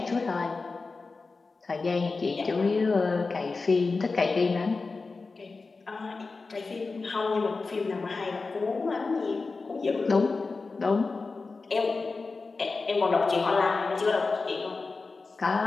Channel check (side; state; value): right; quieter; 4.0 dB